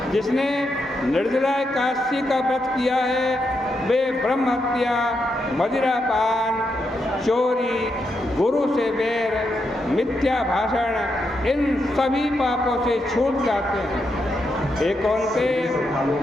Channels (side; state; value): both; normal; correlation 0.83